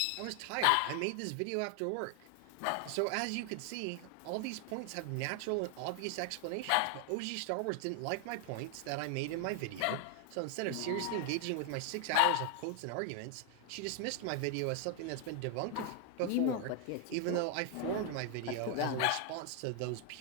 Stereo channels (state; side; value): different; both; correlation 0.00